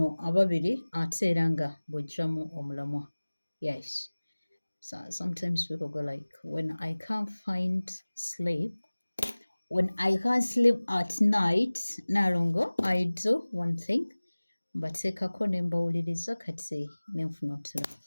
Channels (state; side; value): inverted; both; correlation -1.00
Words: ababiri ate era nga bw'oggyamu omulamwa. Yes. So sometimes people go like, when I can't sleep at night, Nalongo, I do one thing. Mbateekako ne mbawuliriza kati ne nfuna otulo.